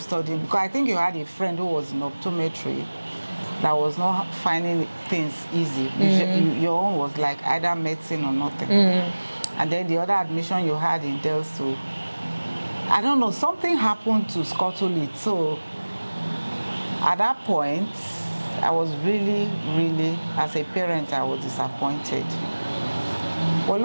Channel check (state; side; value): inverted; both; correlation -1.00